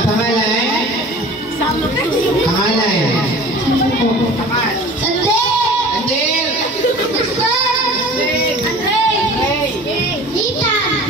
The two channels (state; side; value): normal; both; correlation 0.42